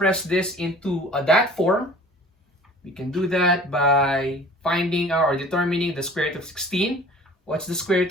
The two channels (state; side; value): normal; both; correlation 0.47